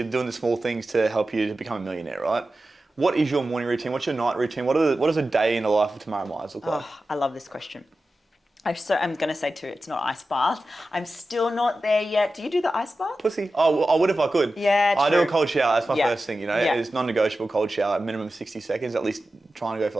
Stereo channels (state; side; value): normal; both; correlation 0.93